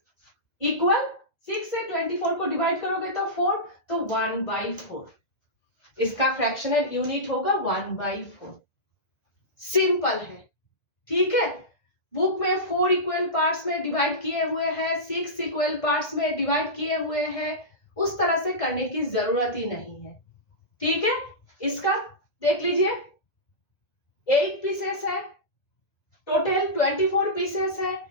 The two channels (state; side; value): late; right; 1.7 ms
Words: इक्वल 6 से 24 को डिवाइड करोगे तो 4, तो 1/4. इसका फ्रैक्शनल यूनिट होगा 1/4. सिंपल है. ठीक है, बुक में 4 इक्वल पार्ट्स में डिवाइड किए हुए हैं, 6 इक्वल पार्ट्स में डिवाइड किए हुए हैं. उस तरह से करने की जरूरत ही नहीं है. ठीक है, इसका देख लीजिए 8 पीसेस है, टोटल 24 पीसेस है.